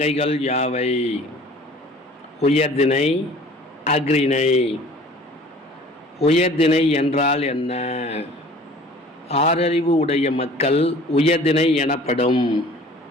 யாவை? உயர்திணை, அஃறிணை. உயர்திணை என்றால் என்ன? ஆறறிவு உடைய மக்கள் உயர்திணை எனப்படும்.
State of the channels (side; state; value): both; normal; correlation 0.48